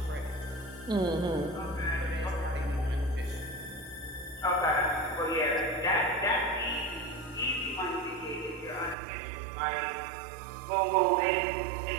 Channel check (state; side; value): drops out; left; at 9.0 s